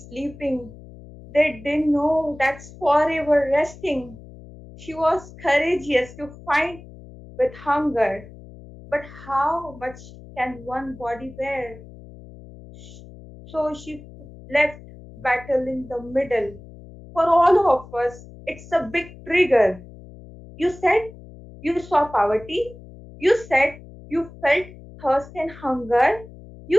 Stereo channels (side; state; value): left; noise; hum, 18 dB below the sound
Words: sleeping. They didn't know that's forever resting. She was courageous to fight with hunger. But how much can one body bear? So she left battle in the middle. For all of us, it's a big trigger. You said you saw poverty. You said you felt thirst and hunger.